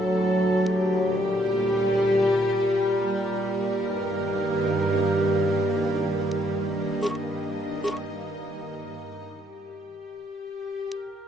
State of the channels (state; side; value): normal; both; correlation 0.70